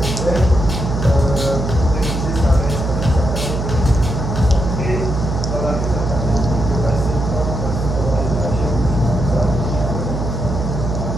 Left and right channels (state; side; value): noise; right; hum, 3 dB below the sound